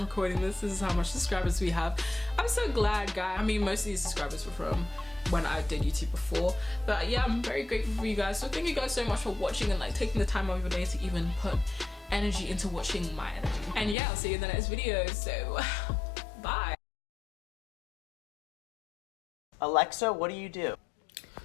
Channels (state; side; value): drops out; right; at 14.0 s